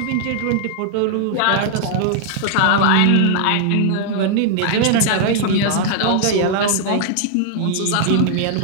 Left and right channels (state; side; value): different; both; correlation 0.00